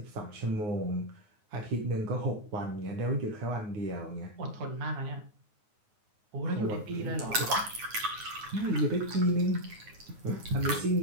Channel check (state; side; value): late; left; 9.5 ms